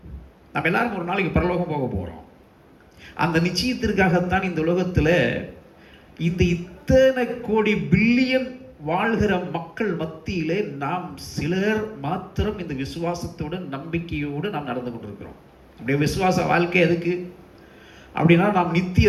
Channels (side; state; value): both; identical; correlation 1.00